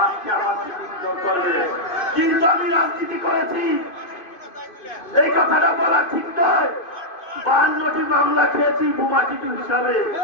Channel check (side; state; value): right; late; 2.5 ms